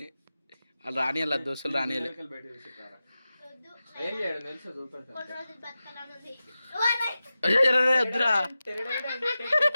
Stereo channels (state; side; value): inverted; both; correlation -0.94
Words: వాళ్ళు రాని వాళ్ళ దోస్తులు రాని బయట తీసుకురా. ఏం చేయడం తెలుసా చూపెడతా. కొన్ని రోజులు బతకాలని ఉంది వద్దురా